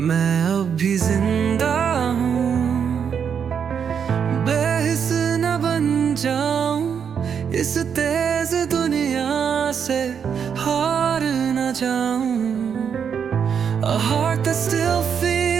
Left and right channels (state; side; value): quieter; left; 7.3 dB